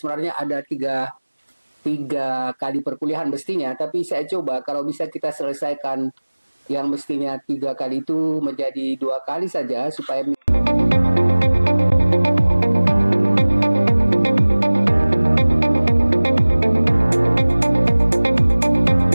ada tiga kali perkuliahan mestinya, tapi saya coba kalau bisa kita selesaikan yang mestinya 3 kali itu menjadi 2 kali saja supaya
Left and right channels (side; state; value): both; inverted; correlation -1.00